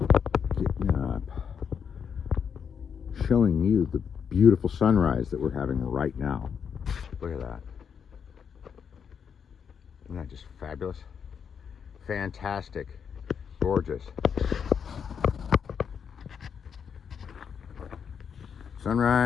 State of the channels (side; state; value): right; quieter; 7.1 dB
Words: Getting up. Showing you the beautiful sunrise that we're having right now. Look at that. Isn't that just fabulous? Fantastic. Gorgeous.